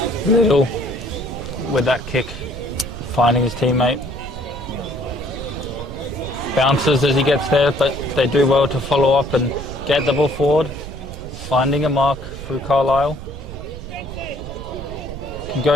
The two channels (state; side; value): noise; right; rumble, 11 dB below the sound